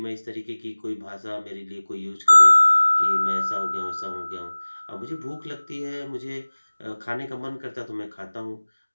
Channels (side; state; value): both; inverted; correlation -1.00